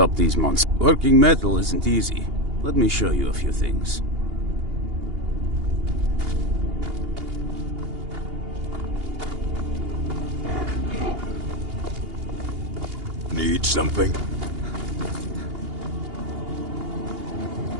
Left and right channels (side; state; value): left; late; 2.8 ms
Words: these monsters. Working metal isn't easy. Let me show you a few things. Need something?